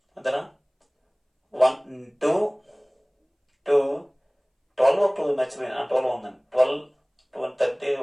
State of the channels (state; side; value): identical; both; correlation 1.00